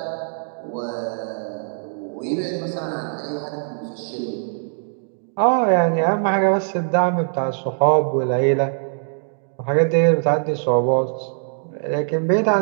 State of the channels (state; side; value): silent; left; digital silence